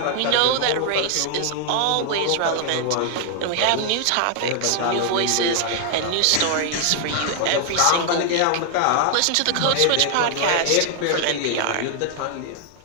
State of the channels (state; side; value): different; both; correlation 0.00